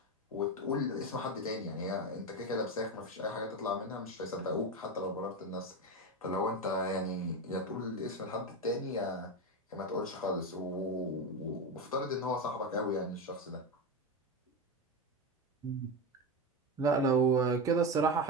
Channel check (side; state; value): both; normal; correlation 0.16